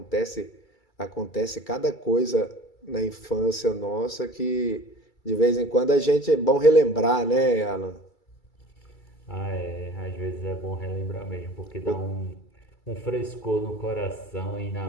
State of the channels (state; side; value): late; right; 2.3 ms